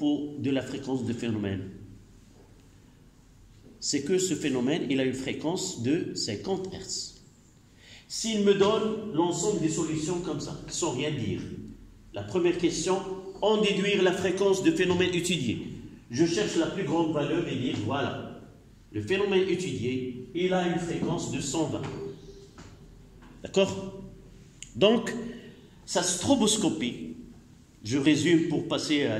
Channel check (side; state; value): both; identical; correlation 1.00